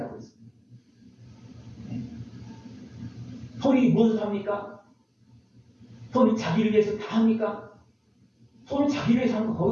있습니다. 손이 무엇을 합니까? 손이 자기를 위해서 다 합니까? 손은 자기를 위해서 하는 거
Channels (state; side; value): identical; both; correlation 1.00